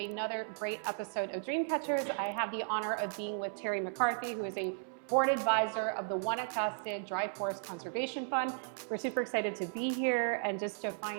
great episode of Dreamcatchers. I have the honor of being with Terri McCarthy, who is a board advisor of the Guanacaste Dry Forest Conservation Fund. We're super excited to be here and just to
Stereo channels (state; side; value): silent; left; 54 dB below the other